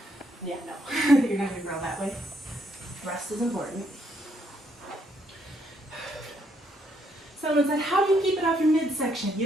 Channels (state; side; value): normal; both; correlation 0.72